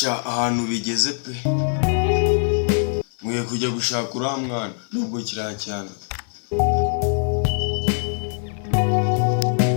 sha ahantu bigeze pe, mwiye kujya gushaka uriya mwana nubwo kiriya cyane.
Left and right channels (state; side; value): silent; right; 60 dB below the other